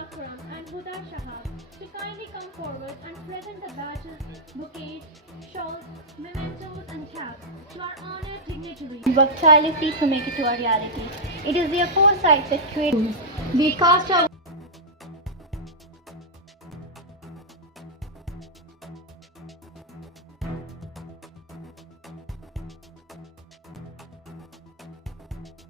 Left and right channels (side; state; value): both; normal; correlation -0.07